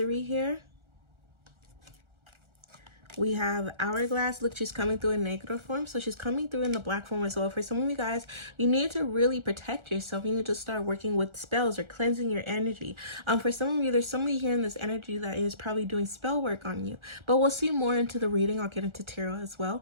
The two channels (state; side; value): late; left; 1.4 ms